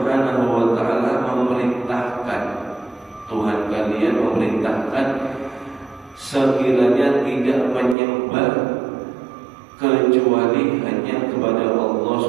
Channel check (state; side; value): drops out; left; at 8.0 s